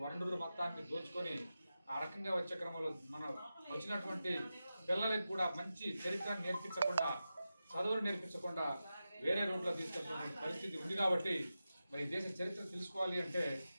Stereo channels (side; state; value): both; inverted; correlation -0.92